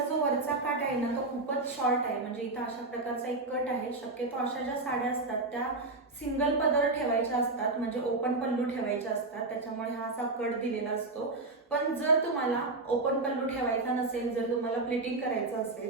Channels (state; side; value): quieter; left; 3.2 dB